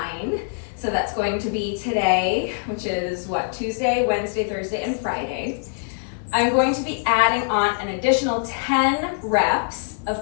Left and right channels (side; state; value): right; silent; digital silence